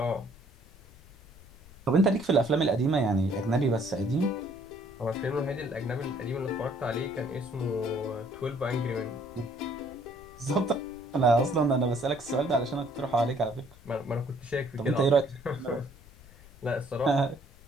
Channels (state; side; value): noise; left; rumble, 22 dB below the sound